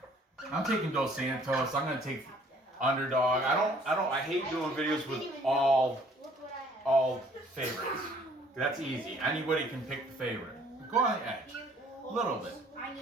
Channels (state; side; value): normal; both; correlation 0.58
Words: Dos Santos. I'm going to take underdog. I hate doing videos with all favorites. That's easy. Anybody can pick the favorite. Go on the edge. A little bit.